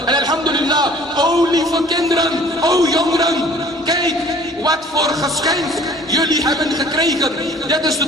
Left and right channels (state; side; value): normal; both; correlation 0.51